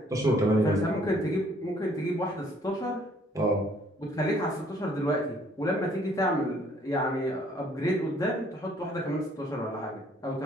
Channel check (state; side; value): normal; both; correlation 0.62